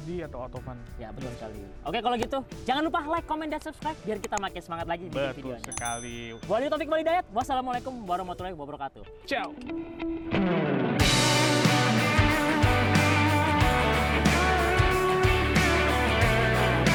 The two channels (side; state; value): both; identical; correlation 1.00